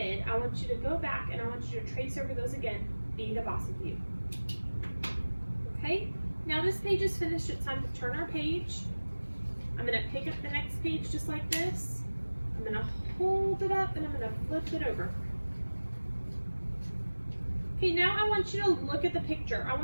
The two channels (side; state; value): both; inverted; correlation -1.00